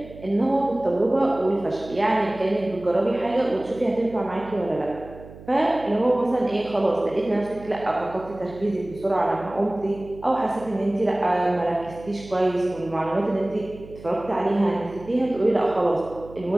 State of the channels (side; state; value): right; noise; hum, 17 dB below the sound